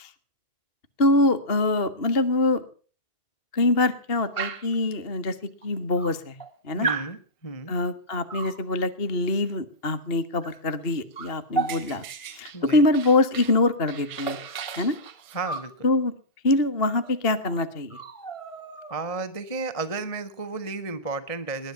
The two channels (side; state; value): right; late; 2.7 ms